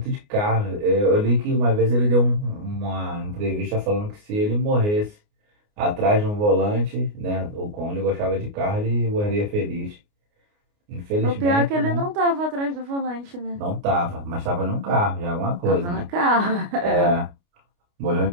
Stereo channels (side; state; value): left; late; 29 ms